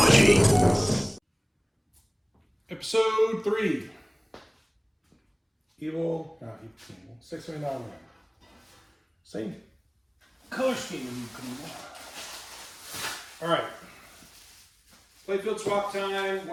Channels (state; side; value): identical; both; correlation 1.00